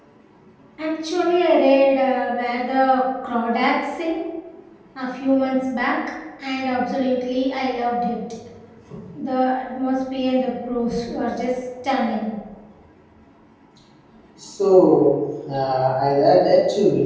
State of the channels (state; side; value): identical; both; correlation 1.00